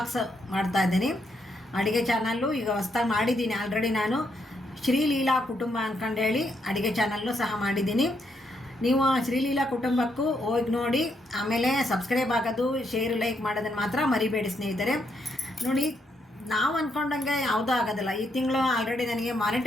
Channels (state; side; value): normal; both; correlation 0.77